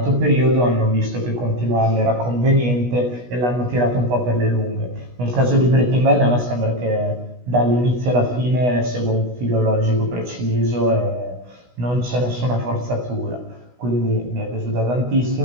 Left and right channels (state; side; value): late; left; 16 ms